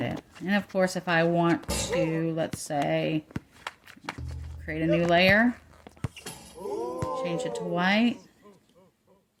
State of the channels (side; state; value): both; identical; correlation 1.00